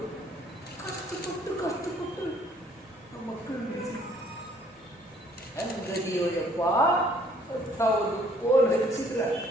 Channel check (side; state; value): both; normal; correlation 0.61